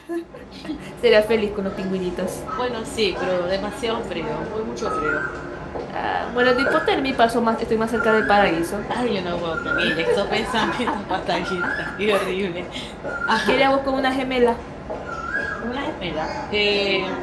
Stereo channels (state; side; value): identical; both; correlation 1.00